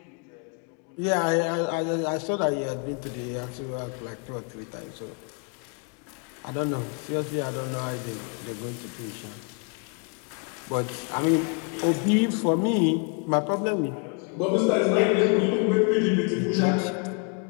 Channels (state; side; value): quieter; right; 38.1 dB